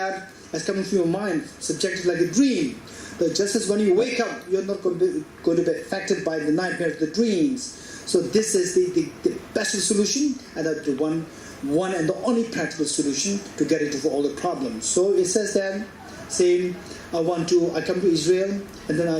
as coming from your mind, subjective like a dream, that just as when you wake up, you're not going to be affected by the nightmares, the dreams. So this is the best solution, and the one and the only practical solution to get into all the problems. So it says then, saying, I come to Israel, and then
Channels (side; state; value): both; identical; correlation 1.00